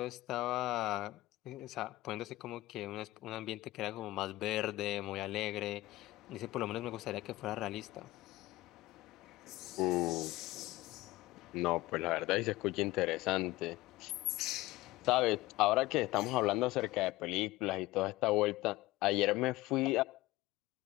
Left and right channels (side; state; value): right; quieter; 18.3 dB